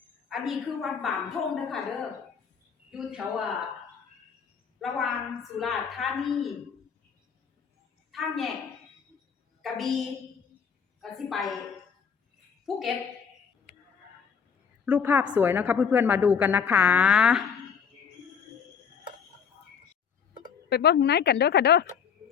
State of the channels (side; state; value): right; quieter; 6.8 dB